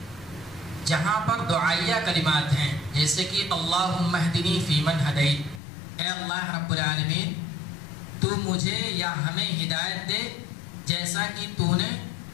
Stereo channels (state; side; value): drops out; right; at 5.6 s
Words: جہاں پر دعائیہ کلمات ہیں جیسے کہ اللہم اہدنی فیمن ہدیت، اے اللہ رب العالمین تو مجھے یا ہمیں ہدایت دے جیسا کہ تو نے